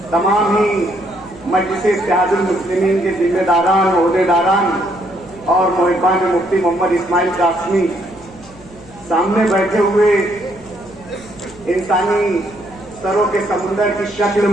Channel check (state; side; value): noise; left; hum, 23 dB below the sound